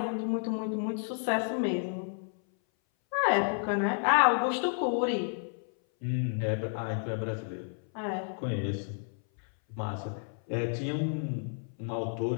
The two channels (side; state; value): right; silent; 57 dB below the other